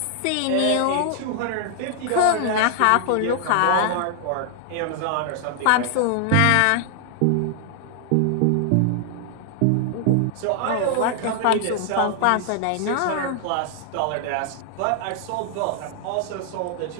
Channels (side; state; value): both; different; correlation 0.00